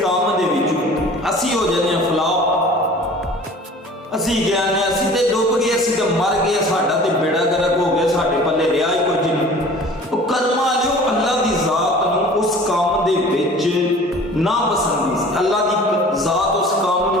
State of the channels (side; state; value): both; normal; correlation 0.45